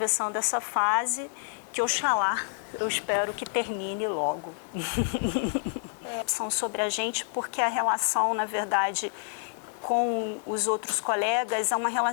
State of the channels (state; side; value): silent; right; 59 dB below the other